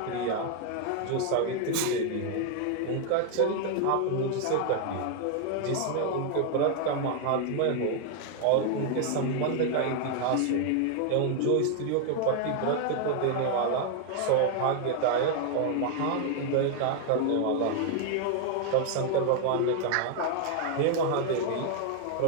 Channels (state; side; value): different; both; correlation 0.00